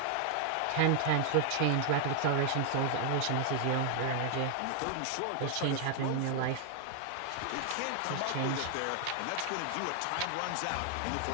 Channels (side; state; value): both; different; correlation 0.00